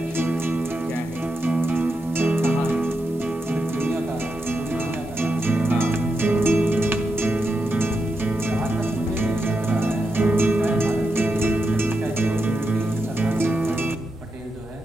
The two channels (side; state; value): both; normal; correlation 0.86